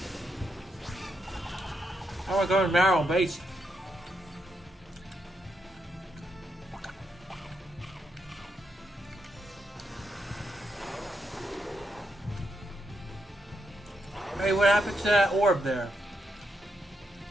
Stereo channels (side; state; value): both; normal; correlation 0.82